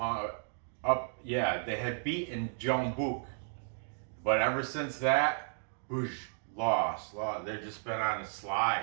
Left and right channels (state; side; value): silent; left; digital silence